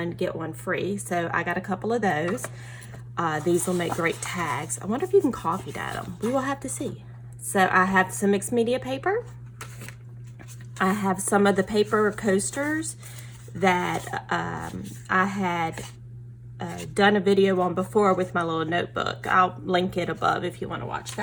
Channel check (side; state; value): both; identical; correlation 1.00